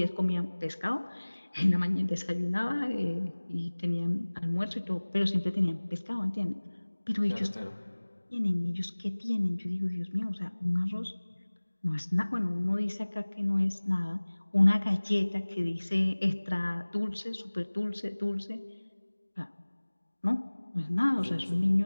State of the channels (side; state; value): both; inverted; correlation -1.00